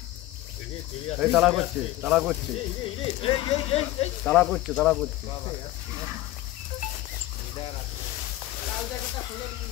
এই তাড়া করছে তাড়া করছে তাড়া করছে তাড়া করছে।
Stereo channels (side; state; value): right; quieter; 16.2 dB